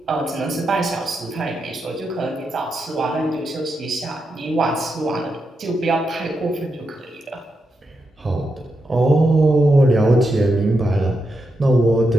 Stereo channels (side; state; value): both; normal; correlation 0.85